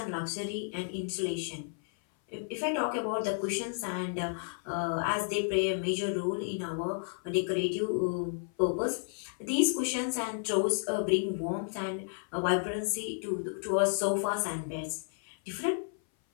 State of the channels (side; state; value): right; silent; 56 dB below the other